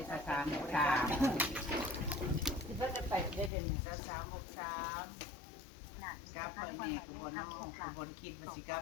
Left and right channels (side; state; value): right; drops out; at 3.5 s